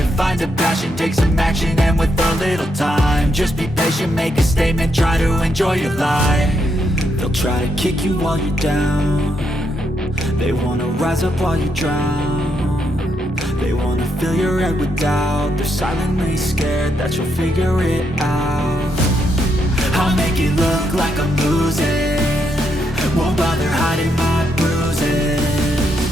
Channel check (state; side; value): normal; both; correlation 0.79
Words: Find a passion, take some action, and with a little time, just be patient, make a statement, try to enjoy your life. They'll try to kick you while you're down. They wanna rise up while you drown. They wanna fill your head with doubt. They're silently scared that you'll figure it out. I'll make it look like I'm losing, won't bother hiding my bruises.